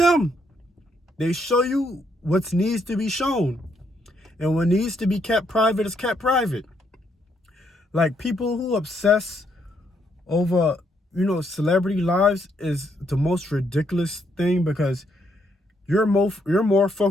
They show you what needs to be shown. And what needs to be kept private is kept private. Like, people who obsess over, celebrity lives is the most ridiculous thing, because you're more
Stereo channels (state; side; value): normal; both; correlation 0.74